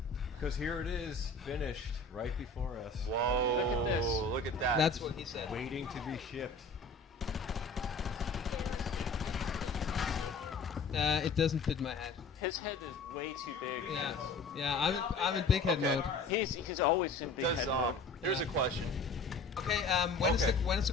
Because here it is, finished, right before us. Whoa, look at that. That's what he said. Waiting to be shipped. It doesn't fit my head. His head is way too big. Yeah. I'm in big head Okay. mode. He's always in big Does head mode. here's a question. Okay. When is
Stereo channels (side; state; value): right; quieter; 3.6 dB